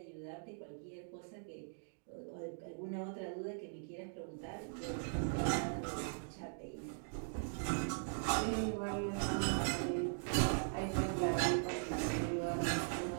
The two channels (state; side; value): silent; left; digital silence